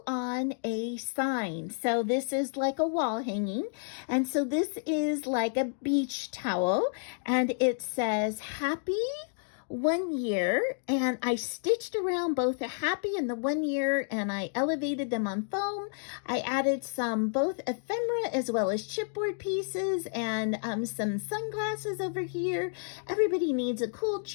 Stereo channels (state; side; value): silent; right; digital silence